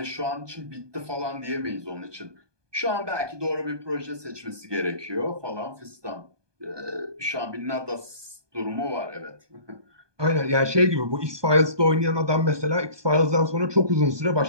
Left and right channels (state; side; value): late; left; 1.2 ms